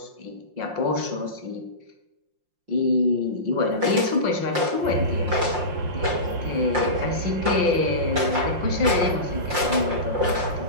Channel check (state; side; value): late; left; 5.6 ms